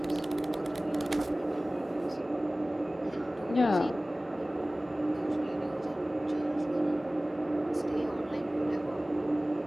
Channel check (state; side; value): normal; both; correlation 0.98